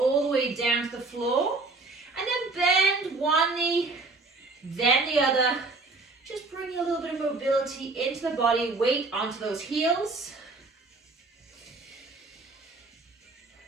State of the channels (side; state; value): left; quieter; 3.5 dB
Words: the way down to the floor. And then bend one knee, then the other. Just bring a little bit of mobility into the body, weight onto those heels.